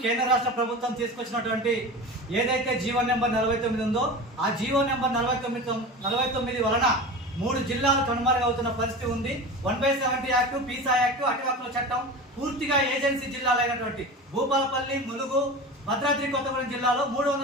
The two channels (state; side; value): normal; both; correlation 0.31